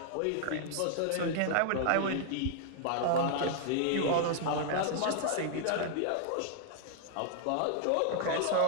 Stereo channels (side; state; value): both; different; correlation -0.01